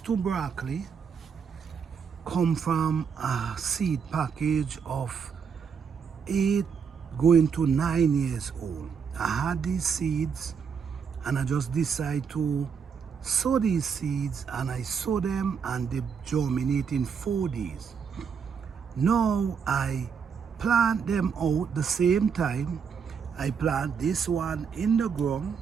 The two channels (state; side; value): quieter; left; 6.5 dB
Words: broccoli come from a seed package of 8 going to 9 years old. I had these seeds and I just decided to sow these seeds, and I sow them and they germinate in 4 days. Now I plant them out the same time. I plant this one in the ground